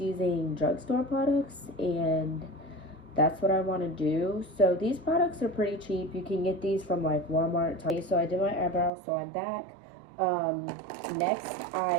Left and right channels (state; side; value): drops out; left; at 8.9 s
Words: drugstore products, and that's what I want to do. So these products are pretty cheap. You can get these from like Walmart. So I did my eyebrows, so I'm back. Next,